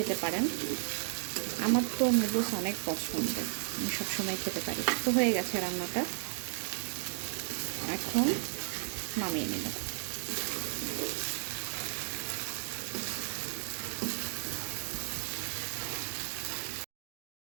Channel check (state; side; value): silent; left; digital silence